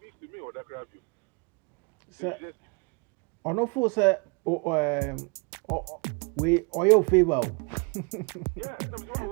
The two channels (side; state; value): left; quieter; 32.4 dB